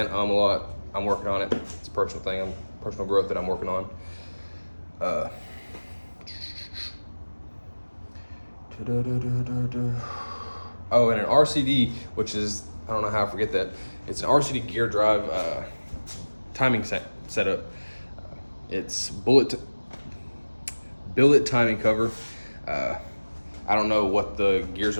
a lot. I'm working on it. It's a personal thing, personal growth that I'm working on. Oh, and an RCD, which is, I don't know how I forget that. It's an RCD gear drive timing setup. It's billet timing cover. I don't know what the gears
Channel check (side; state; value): both; inverted; correlation -1.00